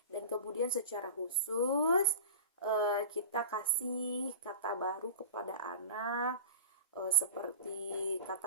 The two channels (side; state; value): both; inverted; correlation -0.36